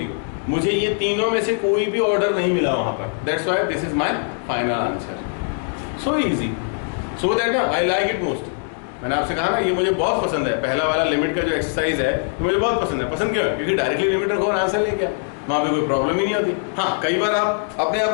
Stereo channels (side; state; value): right; silent; 61 dB below the other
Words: 0। मुझे ये तीनों में से कोई भी ऑर्डर नहीं मिला वहाँ पर, that's why this is my final answer. So easy, so that I like it most. मैंने आपसे कहा ना ये मुझे बहुत पसंद है, पहला वाला लिमिट का जो एक्सरसाइज है तो मुझे बहुत पसंद है। पसंद क्यों है? क्योंकि डायरेक्टली लिमिट रखो और आंसर लेके आओ, वहाँ पे कोई प्रॉब्लम ही नहीं होती। हाँ, कई बार आप अपने आप